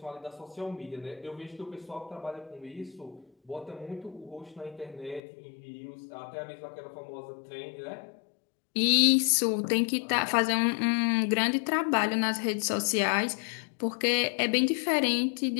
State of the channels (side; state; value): right; drops out; at 5.2 s